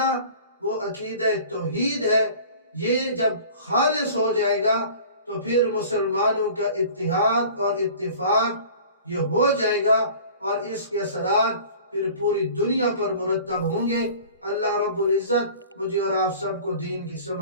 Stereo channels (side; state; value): both; inverted; correlation -0.44